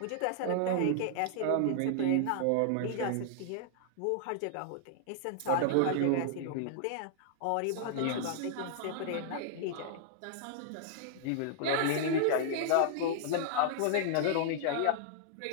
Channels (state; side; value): different; both; correlation -0.01